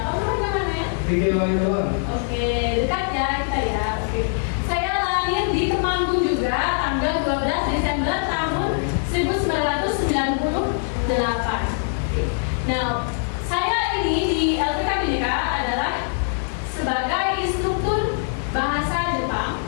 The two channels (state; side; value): silent; right; digital silence